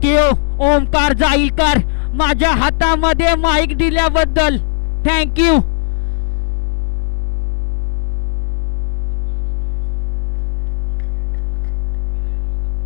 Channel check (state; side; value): silent; right; digital silence